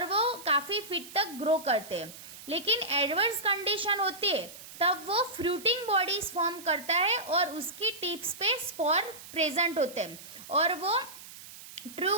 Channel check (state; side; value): noise; right; hiss, 16 dB below the sound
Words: वो काफ़ी फीट तक ग्रो करते हैं। लेकिन एडवर्स कंडीशन होती है तब वो फ्रूटिंग बॉडीज फॉर्म करता है और उसकी टिप्स पे स्पोर प्रेजेंट होते हैं और वो